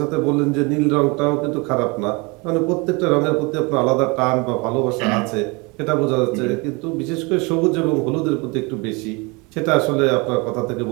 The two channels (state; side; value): quieter; left; 28.0 dB